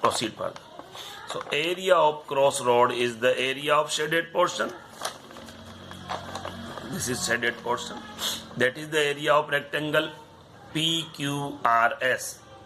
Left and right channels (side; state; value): both; identical; correlation 1.00